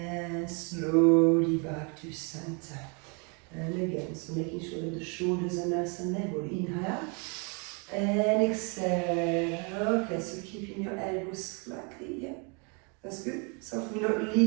slowly back to center. And again, so making sure that the shoulders are nice and level. Inhale. And exhale. Okay, so keeping your elbows slightly, that's good. So we're not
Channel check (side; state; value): left; quieter; 34.7 dB